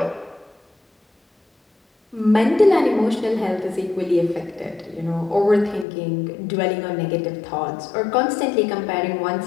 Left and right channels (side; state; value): right; drops out; at 5.9 s